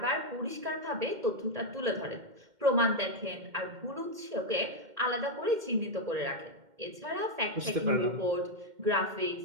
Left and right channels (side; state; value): left; late; 2.1 ms